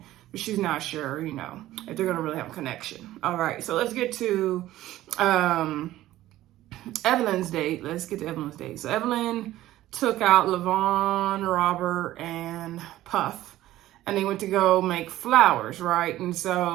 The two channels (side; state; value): left; quieter; 15.0 dB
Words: but she's not sure, if they're going to really have a connection. All right, so let's get to Evelyn's date. Let's get to Evelyn's date. So Evelyn took out Levon, Robert, and Puff, and they went to go make flowers, right? And